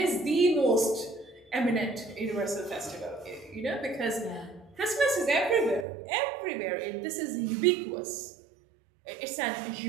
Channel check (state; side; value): drops out; left; at 5.9 s